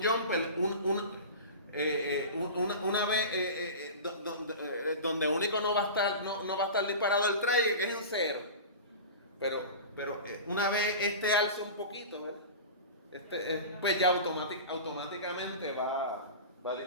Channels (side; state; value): both; inverted; correlation -0.31